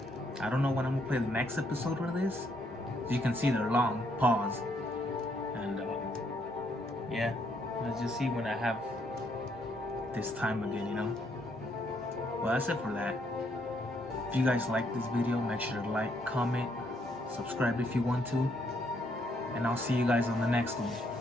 I don't know when I'm gonna play the next episode of this. You can see they're long. Pause. And yeah, let's just see when I have this time again, you know. Well, that's it for that. If you guys like this video, make sure to like, comment, subscribe if you want to, and I'll see you guys on the next one.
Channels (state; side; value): normal; both; correlation 0.72